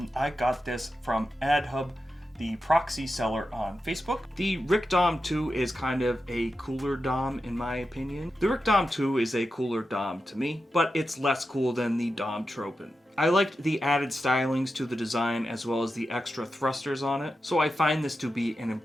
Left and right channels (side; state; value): both; normal; correlation 0.90